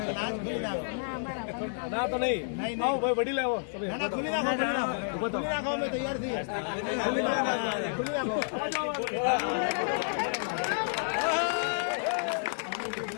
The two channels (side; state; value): right; silent; digital silence